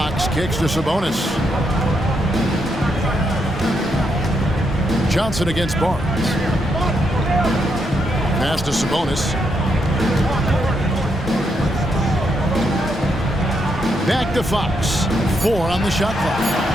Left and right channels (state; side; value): normal; both; correlation 0.79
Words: kicks to Sabonis. Johnson against Barnes. Pass to Sabonis. Back to Fox. 4 on the shot clock.